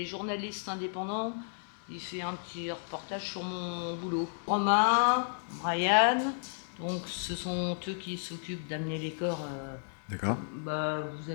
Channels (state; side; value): silent; right; digital silence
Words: journaliste indépendant, il fait un petit reportage sur mon boulot. Romain, Brian, donc ce sont eux qui s'occupent d'amener les corps. D'accord. Vous